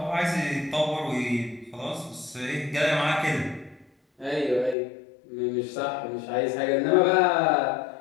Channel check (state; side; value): drops out; right; at 4.8 s